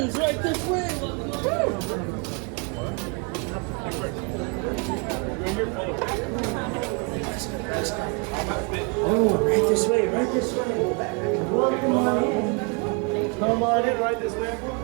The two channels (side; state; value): left; quieter; 34.9 dB